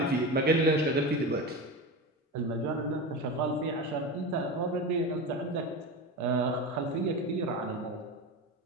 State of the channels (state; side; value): normal; both; correlation 0.24